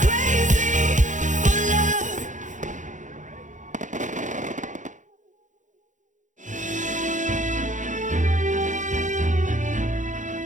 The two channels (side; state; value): left; late; 0.36 ms